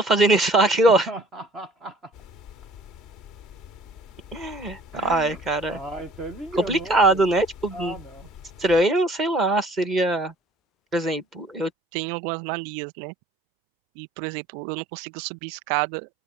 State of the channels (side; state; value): left; drops out; at 11.7 s